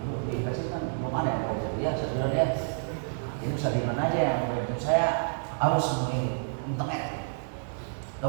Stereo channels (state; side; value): silent; left; digital silence